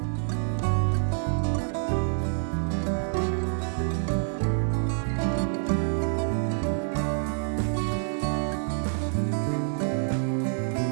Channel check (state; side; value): silent; left; digital silence